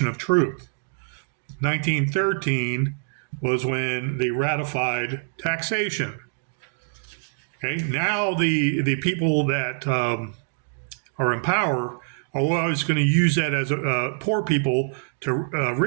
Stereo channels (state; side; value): silent; left; 62 dB below the other